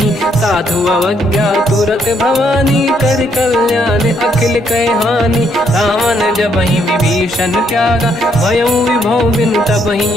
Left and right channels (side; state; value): both; normal; correlation 0.72